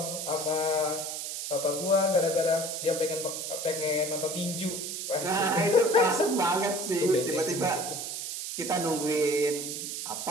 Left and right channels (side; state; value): right; noise; hiss, 5 dB below the sound